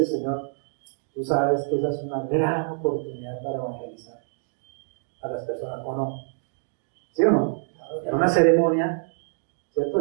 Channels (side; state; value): left; silent; digital silence